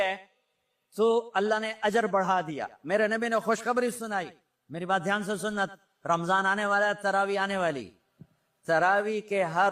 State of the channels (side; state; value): both; identical; correlation 1.00